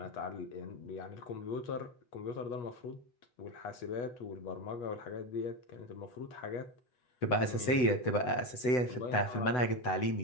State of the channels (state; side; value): late; right; 8.0 ms